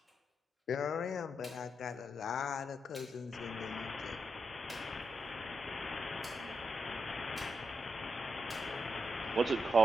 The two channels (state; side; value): normal; both; correlation 0.84